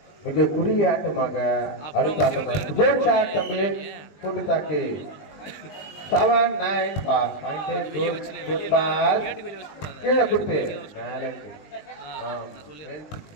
மிக குறுகிய ஆட்டமாக அடுத்த ஆட்டம். குட் ஷாட் தம்பி கூட்டு தாக்கி 7-9 பாஸ். குட் பாஸ் கீழே கொடுத்து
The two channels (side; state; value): right; late; 20 ms